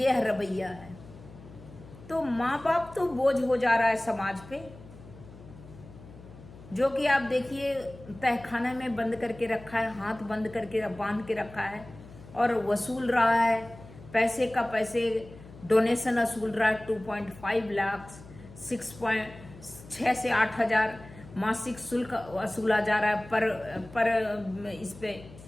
रवैया है। तो माँ बाप तो बोझ हो जा रहा है समाज पे, जो कि आप देखिए तहखाने में बंद करके रखा है, हाथ बंद करके बांध के रखा है और वसूल रहा है पैसे डोनेशन वसूल रहा है। 2.5 लाख, 6 से 8 हजार मासिक शुल्क वसूला जा रहा है पर इस पे,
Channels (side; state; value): left; noise; hum, 19 dB below the sound